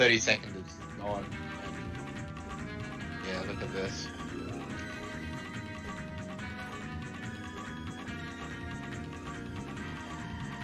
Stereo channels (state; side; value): identical; both; correlation 1.00